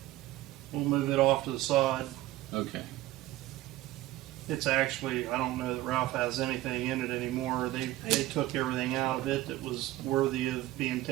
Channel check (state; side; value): quieter; left; 16.2 dB